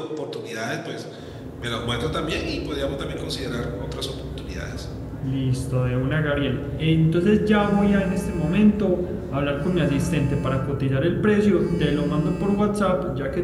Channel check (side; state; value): both; identical; correlation 1.00